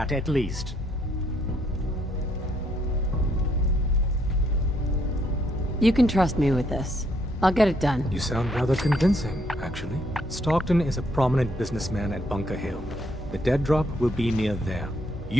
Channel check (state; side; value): normal; both; correlation 0.71